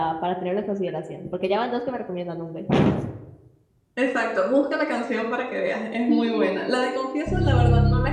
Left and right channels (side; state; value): both; identical; correlation 1.00